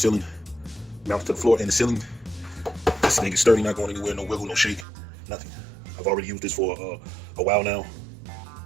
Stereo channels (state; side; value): drops out; left; at 4.9 s